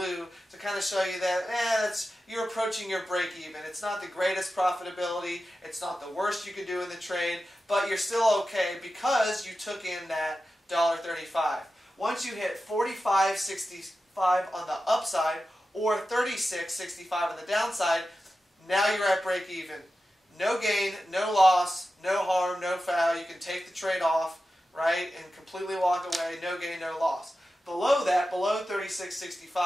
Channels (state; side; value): normal; both; correlation 0.92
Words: to kind of show you that you're approaching your break even. It's not the greatest profitability, it's not the worst you could do in the trade, but you're still okay because you took in that $1.35. Once you hit 45.65 on the upside or 36.65 on the downside, now you're at break even. No gain, no loss, no harm, no foul. You can take the trade off, right, and completely walk away. No gain, no loss. Below that, below